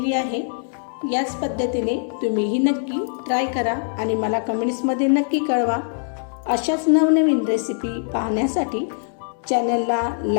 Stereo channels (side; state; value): right; silent; digital silence